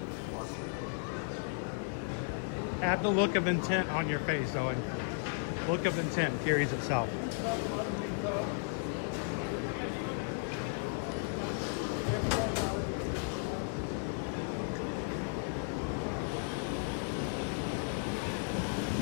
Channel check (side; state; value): right; silent; 55 dB below the other